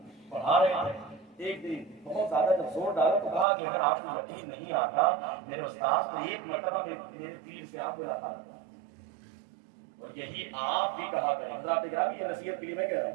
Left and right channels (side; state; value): left; drops out; at 3.5 s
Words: پڑھا رہے ہیں. ایک دن بہت زیادہ جب زور ڈالا تو کہا کہ اگر آپ کو یقین نہیں آتا میرے استاد نے ایک مرتبہ میرے پیر سے آپ ملاقات کرا، اور یہی آپ بھی کہا کریں. حضرات گرامی، یہ نصیحت کے لیے میں کہہ رہا